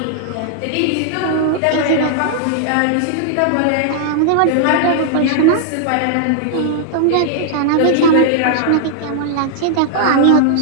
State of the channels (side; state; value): both; different; correlation -0.01